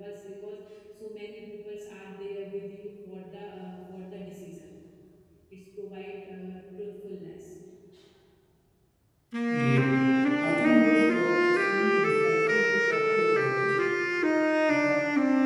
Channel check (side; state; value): both; identical; correlation 1.00